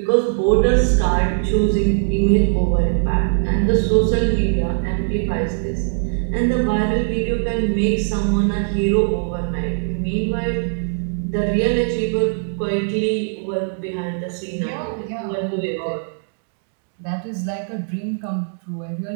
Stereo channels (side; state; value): left; silent; digital silence